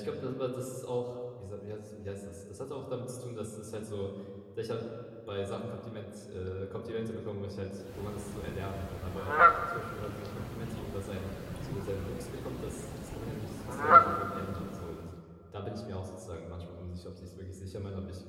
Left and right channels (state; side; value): identical; both; correlation 1.00